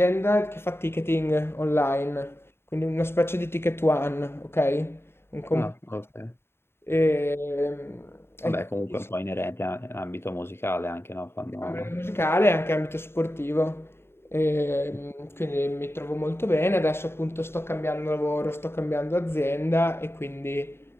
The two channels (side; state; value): right; late; 0.12 ms